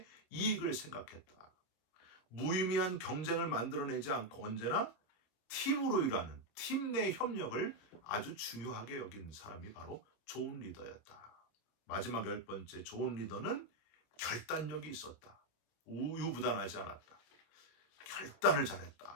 이익을 생각했다. 무의미한 경쟁을 만들어내지 않고 언제나 팀으로 일하는 팀 내 협력을 아주 중요하게 여긴 사람이 바로 좋은 리더였다. 마지막 열 번째, 좋은 리더는 결단력이 있었다. 우유부단하지 않았다. 결단을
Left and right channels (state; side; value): late; right; 27 ms